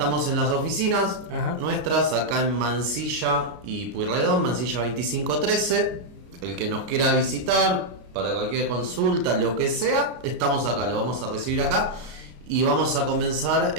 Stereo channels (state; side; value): late; left; 33 ms